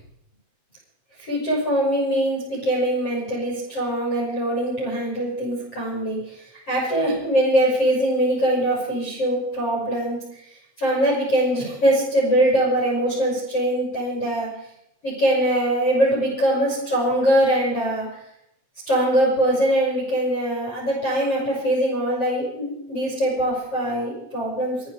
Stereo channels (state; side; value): late; right; 7.5 ms